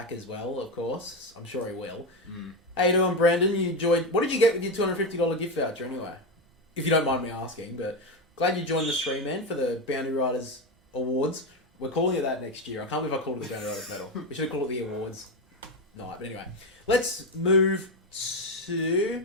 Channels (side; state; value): both; normal; correlation 0.13